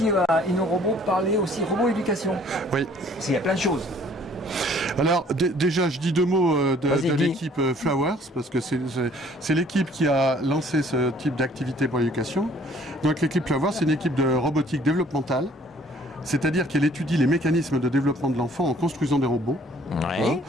à InnoRobot parler aussi robot éducation. Oui. Parce qu'il y a plein de choses. Alors déjà, je dis deux mots de l'équipe Flowers, parce que c'est l'équipe qui a lancé ce type d'activité pour l'éducation. Donc l'équipe Flowers, c'est une équipe de robotique développementale, c'est-à-dire qu'elle étudie les mécanismes de développement de l'enfant en construisant des robots. Ouais. Hein.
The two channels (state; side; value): normal; both; correlation 0.57